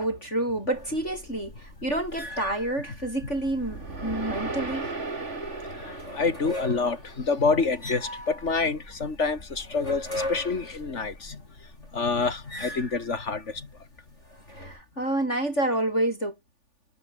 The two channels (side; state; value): right; late; 3.5 ms